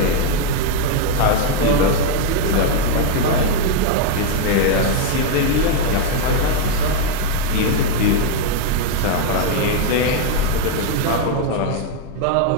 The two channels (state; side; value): different; both; correlation 0.00